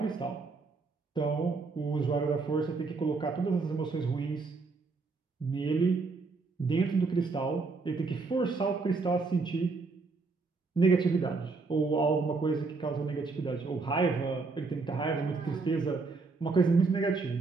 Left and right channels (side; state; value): left; quieter; 4.1 dB